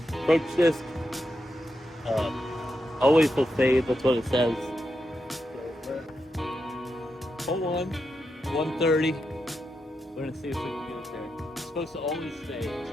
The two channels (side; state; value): both; normal; correlation 0.86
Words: Approach disc. Always will fade, that's what it says. Hold on, 130. We're going to see if we can get it there. It's supposed to always fade, so